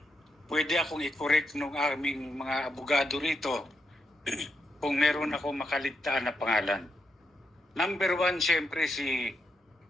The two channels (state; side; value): normal; both; correlation 0.82